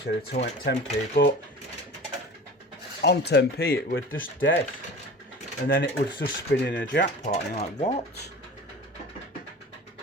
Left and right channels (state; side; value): normal; both; correlation 0.38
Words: of 10p, but on 10p it would just dead, and then it would just spin in a jackpot, and you're like, what?